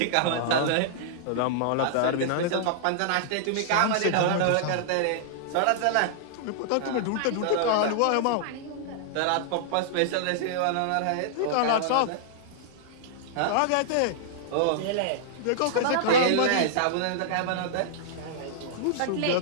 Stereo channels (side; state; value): both; different; correlation -0.01